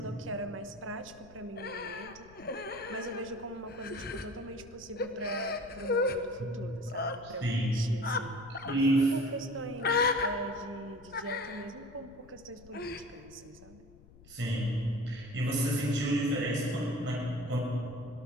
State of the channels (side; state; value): left; noise; rumble, 22 dB below the sound